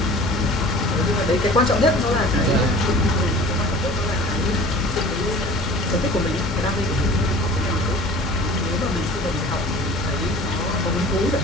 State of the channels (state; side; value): normal; both; correlation 0.43